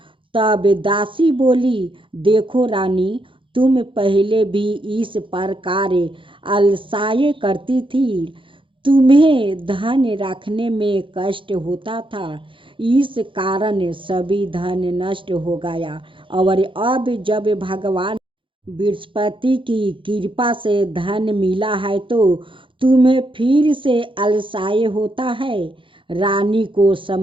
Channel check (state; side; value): late; left; 0.25 ms